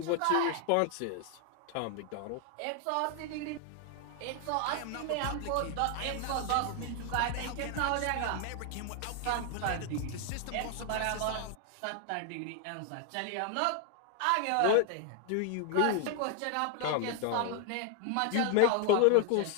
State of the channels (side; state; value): both; different; correlation 0.00